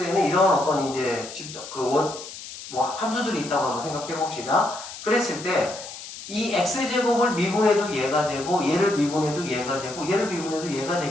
이런 어떤 이제 함수들이 있다고 한번 생각해 봅시다. 그랬을 때 이 x제곱을 미분해도 얘가 되고 얘를 미분해도 얘가 되고 얘를 미분해도 얘가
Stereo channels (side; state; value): left; noise; hiss, 12 dB below the sound